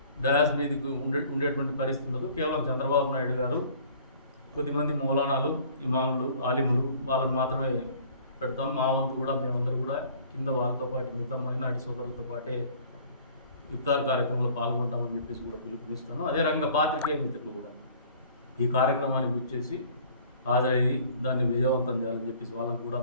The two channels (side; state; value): both; inverted; correlation -0.52